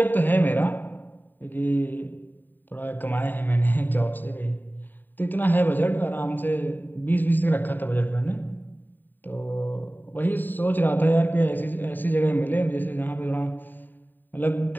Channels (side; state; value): right; late; 0.090 ms